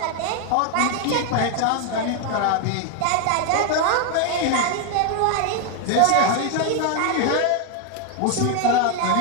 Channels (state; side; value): different; both; correlation 0.00